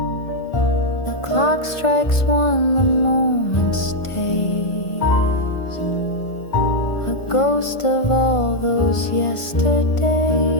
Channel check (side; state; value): right; late; 1.4 ms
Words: The clock strikes one, the moment stays, a ghost of all those yesterdays.